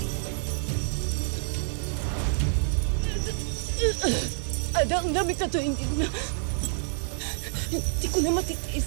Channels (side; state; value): left; silent; digital silence